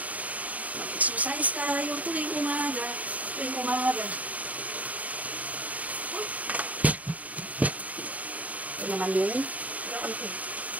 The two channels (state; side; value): late; left; 0.071 ms